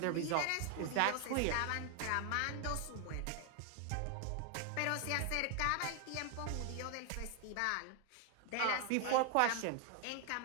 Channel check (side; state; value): both; different; correlation 0.01